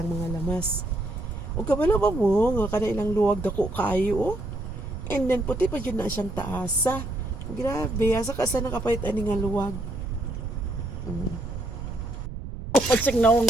mga lamas. O kabalo ba mo nga kada ilang luwag dako kayo oh. And then puti pa jud na siyang taasa. Grabe, asa ka sa nakapait ani nga luwag. Pagsig naong.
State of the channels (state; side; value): noise; right; rumble, 8 dB below the sound